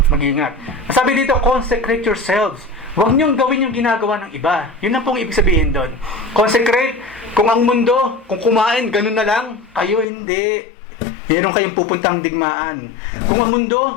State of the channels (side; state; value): right; drops out; at 10.1 s